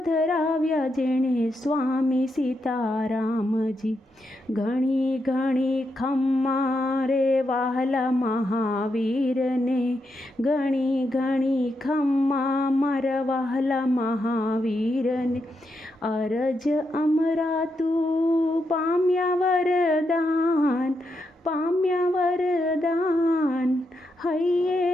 જેણે સ્વામી સીતારામજી. ઘણી ઘણી ખમ્મા રે વહાલા મહાવીરને, ઘણી ઘણી ખમ્મા મારા વહાલા મહાવીરને. અરજ અમરા તું પામ્યા વરદાન, પામ્યા વરદાન.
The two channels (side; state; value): both; normal; correlation 0.83